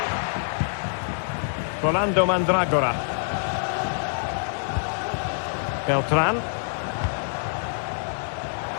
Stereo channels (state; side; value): silent; right; digital silence